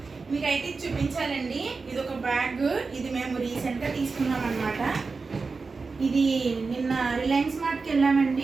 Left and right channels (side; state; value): left; quieter; 4.3 dB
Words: మీకైతే చూపించాలండి. ఇది ఒక బ్యాగ్, ఇది మేము రీసెంట్గా తీసుకున్నాం అనమాట. ఇది నిన్న రిలయన్స్ మార్ట్కి